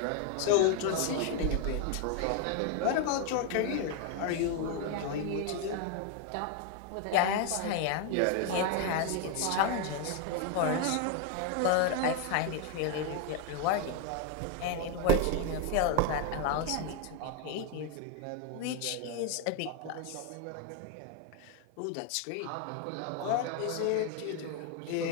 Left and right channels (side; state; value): both; different; correlation 0.01